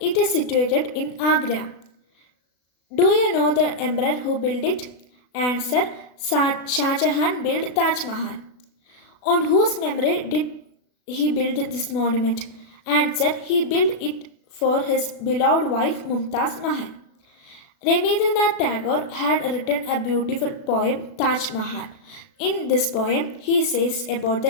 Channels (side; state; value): right; late; 36 ms